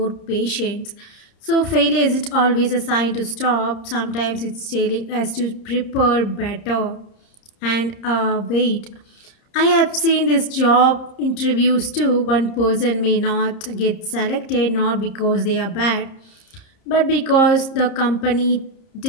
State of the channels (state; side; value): late; right; 30 ms